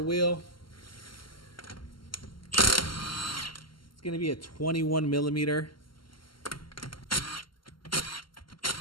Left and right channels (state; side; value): late; right; 0.73 ms